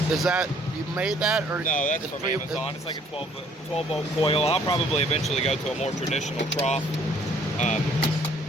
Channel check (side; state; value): both; normal; correlation 0.61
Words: Is that, you made that, or No, that's it's from pretty- Amazon. It's like a 12 volt coil. I'll probably eventually go to a more traditional trough.